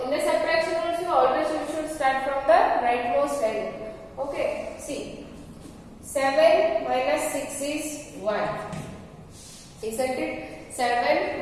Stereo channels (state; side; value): identical; both; correlation 1.00